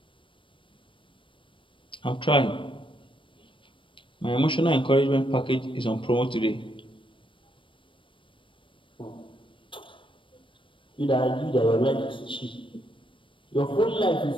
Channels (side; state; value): right; late; 0.25 ms